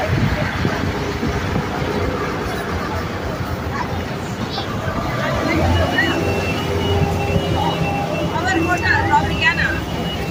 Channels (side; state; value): both; identical; correlation 1.00